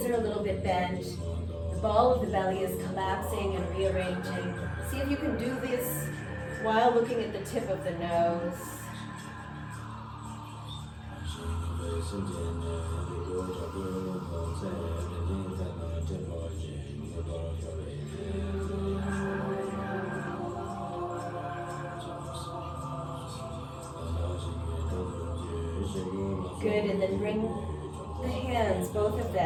are a little bit bent. The ball of the belly is collapsing and rearranging. See if you can do this while looking at the tip of the nose. Good, and then bring the hands, both of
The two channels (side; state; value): both; identical; correlation 1.00